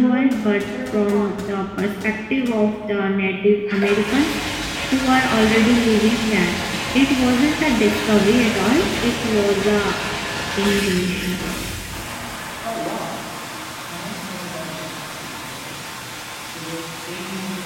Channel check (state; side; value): identical; both; correlation 1.00